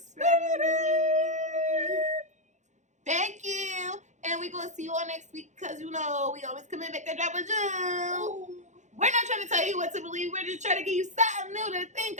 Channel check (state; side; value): late; left; 0.35 ms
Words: Thank you. And we're going to see you all next week because, you know, we always come in back to drop a jewel. We're not trying to tell you what to believe. We're just trying to give you something new to think